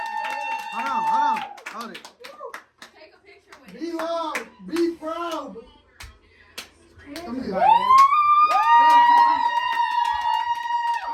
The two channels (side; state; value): both; identical; correlation 1.00